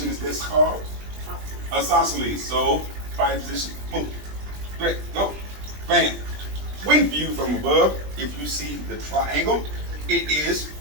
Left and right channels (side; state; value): left; late; 20 ms